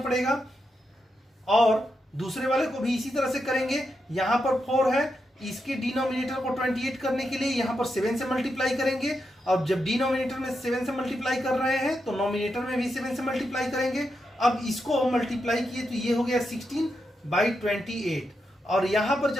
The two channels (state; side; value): normal; both; correlation 0.85